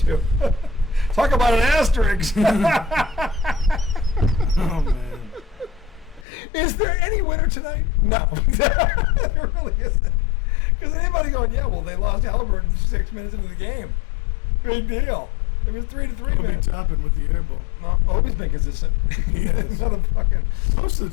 Talk about an asterisk. Oh man. Is there any winner tonight? No. There really isn't. Because anybody going, yeah, well, they lost Haliburton 6 minutes into the game. Big deal. It was 3-3, man. Topping with the air ball. No, Obi's been consistent. Another fucking. Most of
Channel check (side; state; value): right; drops out; at 6.2 s